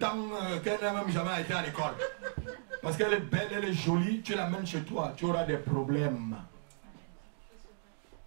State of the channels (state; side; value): silent; left; digital silence